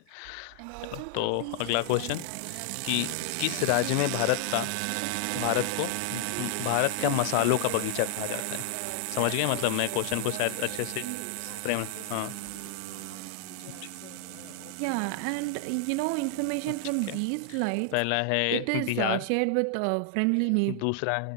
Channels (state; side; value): different; both; correlation 0.00